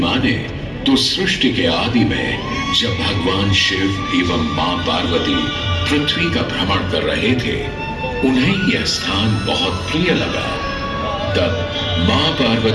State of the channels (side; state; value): both; identical; correlation 1.00